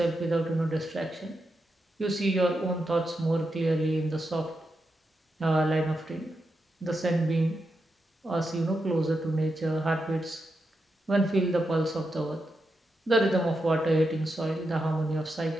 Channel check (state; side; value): normal; both; correlation 0.86